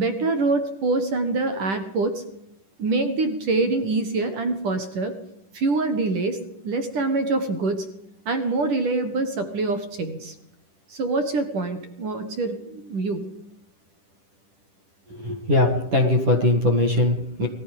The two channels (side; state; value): left; late; 10 ms